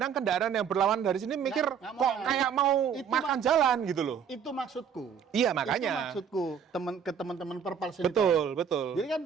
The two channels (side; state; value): left; quieter; 7.4 dB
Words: kendaraan yang berlawan dari sini mikir, nggak kok kayak mau makan jalan gitu loh. Itu maksudku. Iya, makanya. Itu maksudku ke teman-teman Perpals ini. Betul. Jadi kan